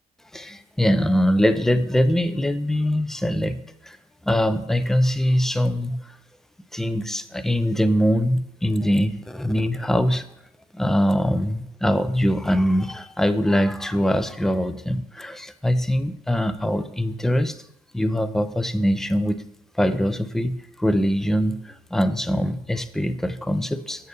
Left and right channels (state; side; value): normal; both; correlation 0.95